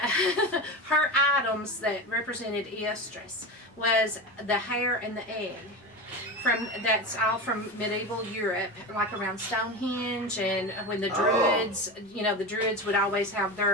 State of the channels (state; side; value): normal; both; correlation 0.23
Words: her items that represented Eostris was the hair and the egg. That's all from medieval Europe, like around Stonehenge, and when the Druids, the Druids would always have